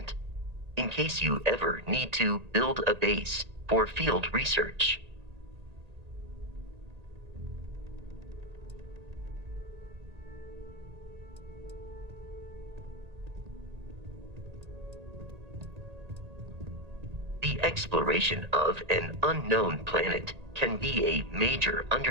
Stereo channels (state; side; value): late; left; 1.8 ms